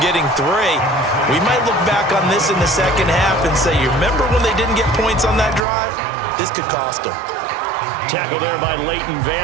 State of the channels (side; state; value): left; drops out; at 5.7 s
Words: getting 3. We might look back on this in the second half and say, you remember when they didn't get points on that drive? This could cost them. Tackle there by Leighton